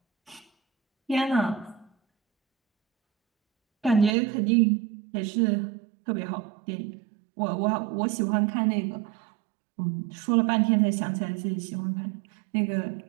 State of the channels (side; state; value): left; drops out; at 4.2 s